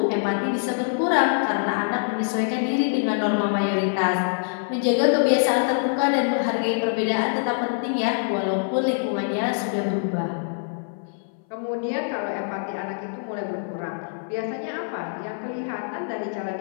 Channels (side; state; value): right; silent; 60 dB below the other